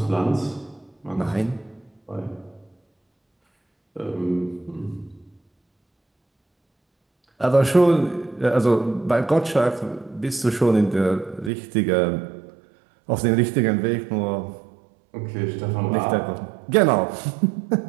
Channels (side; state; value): left; drops out; at 11.5 s